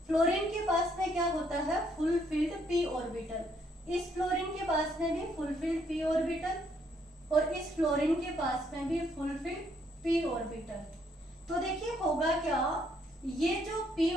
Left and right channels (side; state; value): both; normal; correlation 0.70